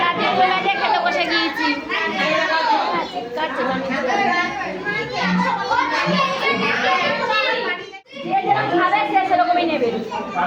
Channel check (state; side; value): identical; both; correlation 1.00